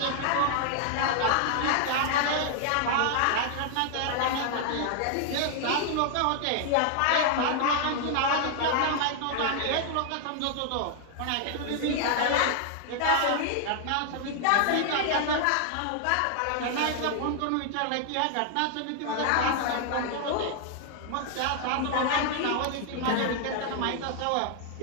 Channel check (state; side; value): different; both; correlation 0.00